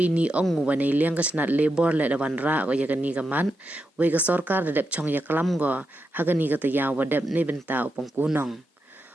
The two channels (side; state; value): both; normal; correlation 0.86